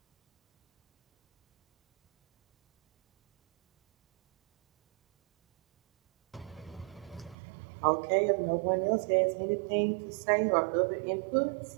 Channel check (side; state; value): left; drops out; at 7.4 s